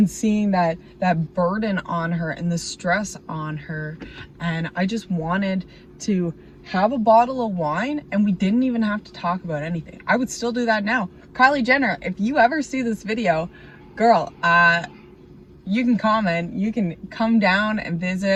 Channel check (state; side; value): identical; both; correlation 1.00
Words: seeing that burden on her and the stress on her, and I just wanted to have a bottle of wine and we didn't even have to talk about anything. I would still do that now. Kylie Jenner, if you ever see this video, girl, you can comment, you can come down and